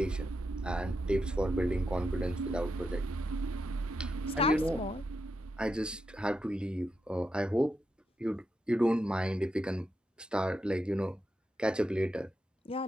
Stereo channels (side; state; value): both; normal; correlation 0.85